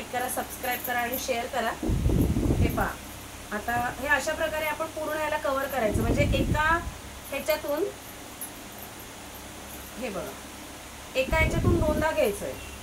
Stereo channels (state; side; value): identical; both; correlation 1.00